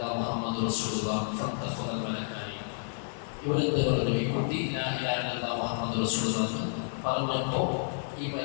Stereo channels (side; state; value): right; silent; digital silence